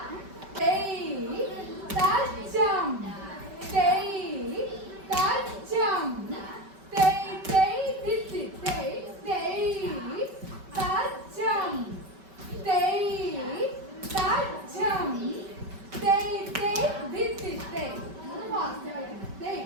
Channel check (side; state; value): left; late; 5.2 ms